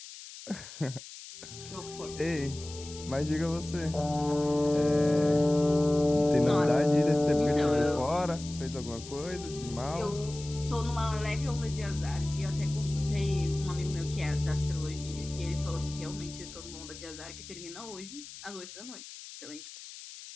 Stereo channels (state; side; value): noise; left; hiss, 14 dB below the sound